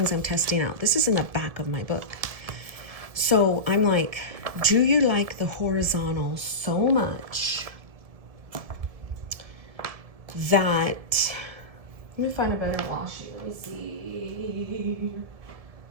I'm testing out. This is in the back of my book. So I'm like, do you like the horizontal so much that, let me find a better washi. Let me see.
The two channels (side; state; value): left; late; 1.7 ms